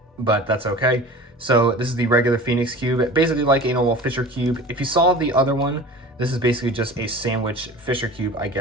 but that's okay. So this is the regular Phoenix cube, basically like a normal Fisher cube. If you saw the other one, this is basically just a sandwich Fisher cube, I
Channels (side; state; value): both; normal; correlation 0.38